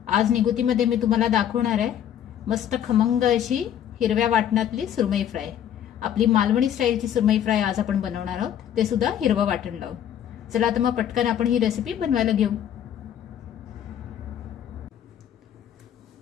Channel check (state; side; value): quieter; right; 10.0 dB